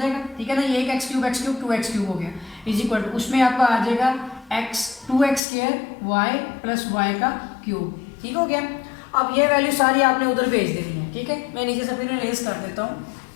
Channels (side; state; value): right; drops out; at 5.4 s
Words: ठीक है ना, ये एक एक्स क्यूब 2x क्यूब हो गया इज इक्वल टू, उसमें आपका आ जाएगा x 2x square y plus y का क्यूब, ठीक हो गया। अब ये वैल्यू सारी आपने उधर भेज देनी है, ठीक है। मैं नीचे से फिर रेस कर देता हूँ।